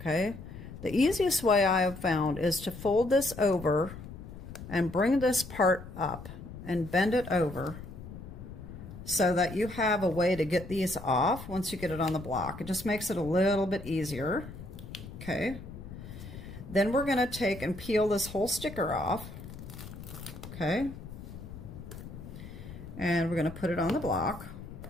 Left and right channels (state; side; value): noise; left; rumble, 13 dB below the sound